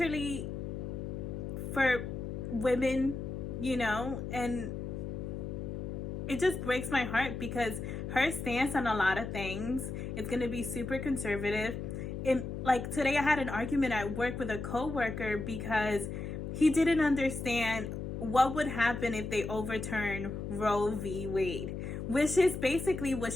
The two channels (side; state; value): left; noise; hum, 5 dB below the sound